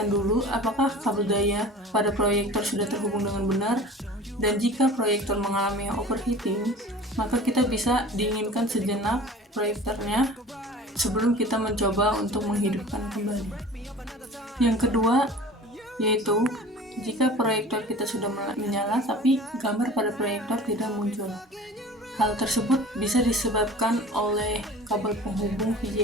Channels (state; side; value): normal; both; correlation 0.41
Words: dulu apakah kabel daya pada proyektor sudah terhubung dengan benar, dan jika proyektor mengalami overheating, maka kita bisa dinginkan sejenak proyektornya sebelum kita mencoba untuk menghidupkan kembali. Yang kedua, yaitu jika proyektor kita sudah menyala tapi gambar pada proyektor tidak muncul. Hal tersebut bisa disebabkan oleh kabel penghubung